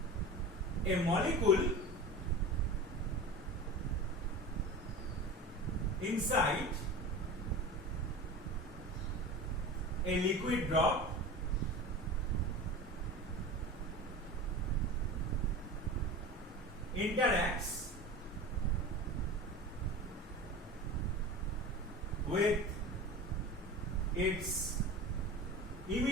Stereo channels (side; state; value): both; normal; correlation 0.32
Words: a molecule inside a liquid drop interacts with its